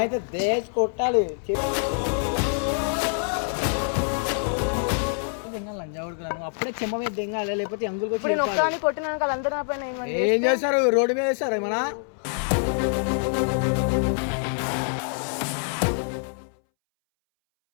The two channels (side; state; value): right; silent; 61 dB below the other